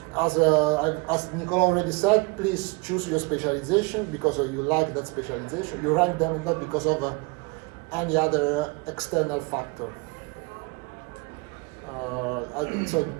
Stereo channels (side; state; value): left; quieter; 27.2 dB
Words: as Nicola already said, please choose your specialization because you like that specialization. You rank them and not because of any other external factor. So